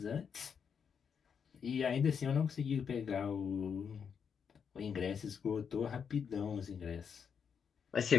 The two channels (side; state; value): right; quieter; 6.9 dB